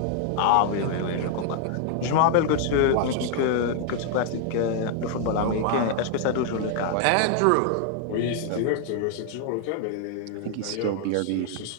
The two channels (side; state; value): both; different; correlation 0.00